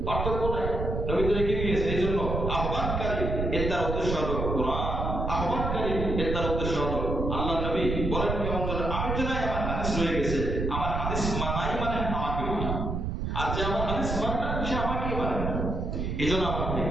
পার্থক্য নাই। নবী তো রেখে গিয়েছে। এই জন্য আহ্বানকারী এর তার উদ্দেশ্য হলো কোরআন, আহ্বানকারী এর তার উদ্দেশ্য হলো আল্লাহ। নবী বলেন কেমন যেন, আমি জানি আমার হাদিস রয়ে গেছে, আমার হাদিস মানাই মানে আমাকে মানা, আর যে আমার হাদিস মানে না সে আমাকেই মানে না। এই জন্য আমার ভাই,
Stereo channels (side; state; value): right; noise; rumble, 2 dB below the sound